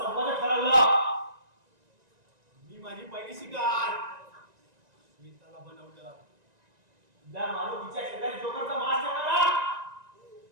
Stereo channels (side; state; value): left; late; 1.9 ms